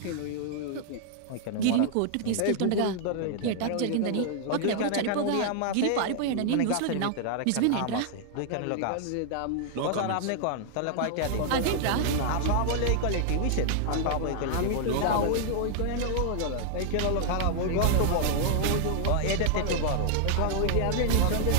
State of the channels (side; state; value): both; different; correlation -0.01